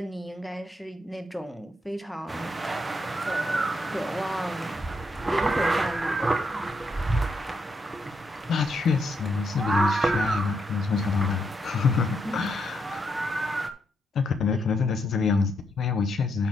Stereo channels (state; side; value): normal; both; correlation 0.79